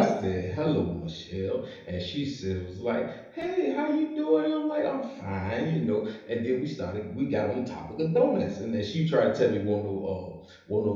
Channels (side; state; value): both; identical; correlation 1.00